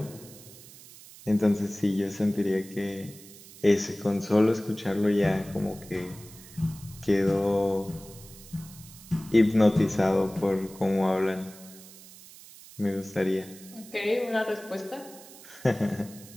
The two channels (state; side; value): noise; right; hiss, 19 dB below the sound